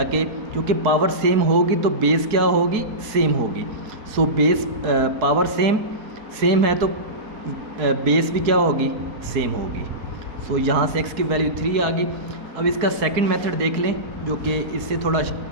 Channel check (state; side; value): late; left; 4.7 ms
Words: क्योंकि पावर सेम होगी तो बेस क्या होगी, सेम होगी। सो बेस पावर सेम है तो बेस भी क्या होगी, सेम होगी। सो यहाँ से x की वैल्यू 3 आ गई। अब इसका सेकंड मेथड देख लें, जो कि इससे थोड़ा